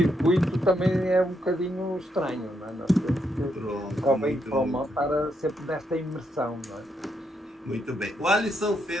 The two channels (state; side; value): normal; both; correlation 0.79